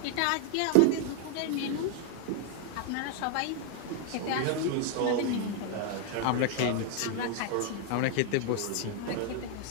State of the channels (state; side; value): different; both; correlation 0.00